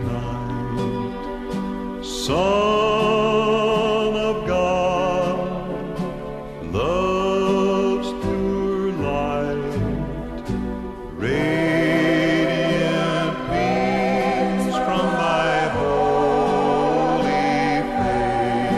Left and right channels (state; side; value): identical; both; correlation 1.00